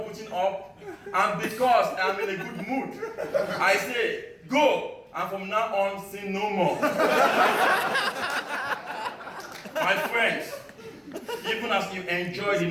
putting up, and because I'm in a good mood, I say, go, and from now on, sin no more. My friends, even as you enjoy the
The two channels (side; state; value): both; identical; correlation 1.00